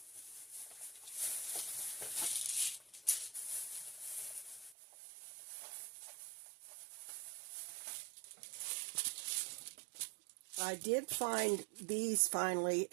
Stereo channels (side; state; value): left; drops out; at 4.8 s